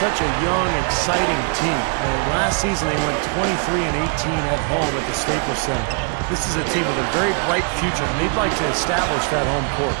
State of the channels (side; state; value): left; quieter; 38.0 dB